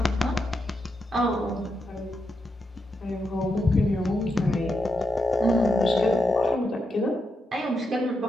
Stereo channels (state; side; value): normal; both; correlation 0.84